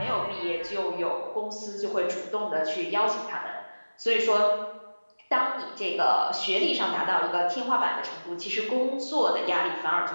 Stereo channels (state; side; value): inverted; both; correlation -1.00